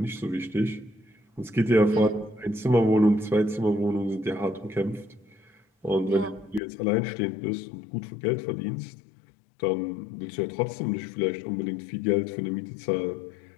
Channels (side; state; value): right; drops out; at 6.6 s